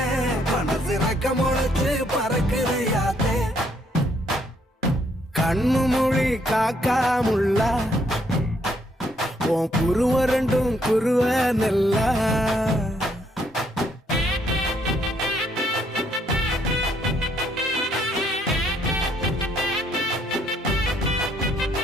மனசு ரக்க முளைச்சு பறக்குதையாத்தே கண்ணு மொழி காக்காமுள்ள உன் குருவ ரெண்டும் குருவ நெல்லா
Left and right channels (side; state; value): both; normal; correlation 0.70